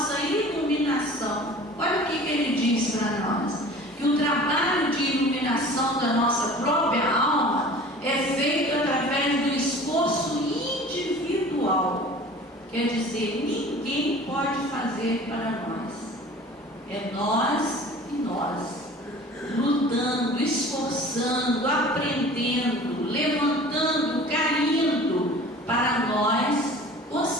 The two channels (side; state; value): both; normal; correlation 0.43